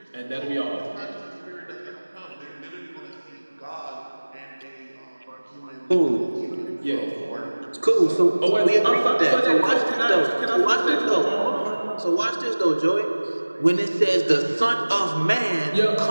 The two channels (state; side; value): inverted; both; correlation -1.00